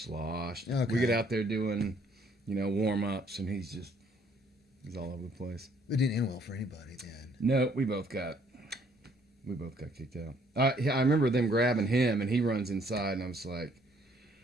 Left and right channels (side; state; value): both; normal; correlation 0.64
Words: Okay. We get out there doing, warm-ups, and he's all over the place. It didn't end well for anybody then. No, we both got We both got kicked out. I remember them grabbing him, and he runs inside, and I was like,